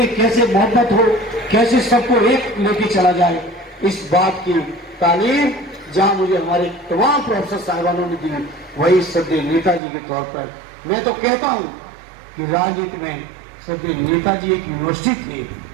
कैसे मोहब्बत हो, कैसे सबको एक लेके चला जाए, इस बात की तालीम जहां मुझे हमारे तमाम प्रोफेसर साहिबानों ने दी, वही श्रद्धेय नेताजी के तौर पर मैं तो कहता हूं कि राजनीति में श्रद्धेय नेताजी एक यूनिवर्सिटी थे।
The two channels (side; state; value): left; drops out; at 9.8 s